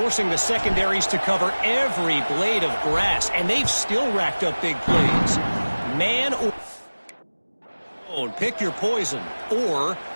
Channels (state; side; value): inverted; both; correlation -1.00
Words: the secondaries to cover every blade of grass. And they've still racked up big plays. Man or zone, pick your poison. Or